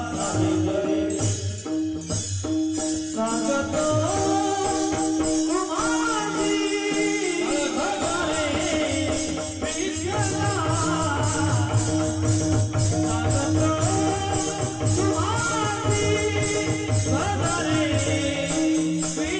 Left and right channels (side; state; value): both; identical; correlation 1.00